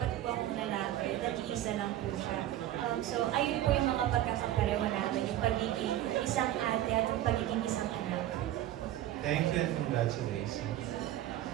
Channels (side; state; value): left; quieter; 13.1 dB